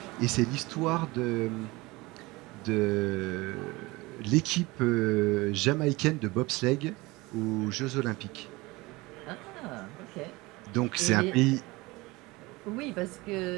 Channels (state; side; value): quieter; left; 22.2 dB